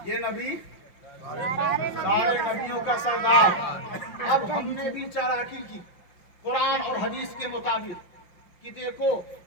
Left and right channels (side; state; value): right; late; 5.8 ms